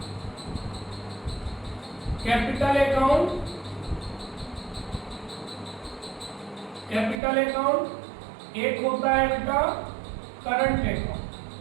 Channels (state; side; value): drops out; left; at 7.2 s